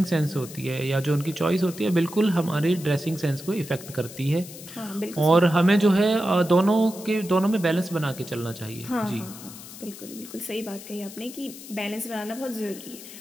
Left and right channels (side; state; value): left; noise; hiss, 15 dB below the sound